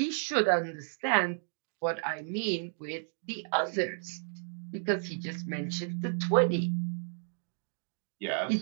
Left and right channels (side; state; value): left; silent; digital silence